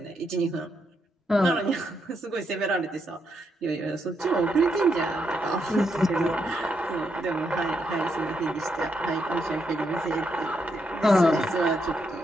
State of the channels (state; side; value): normal; both; correlation 0.79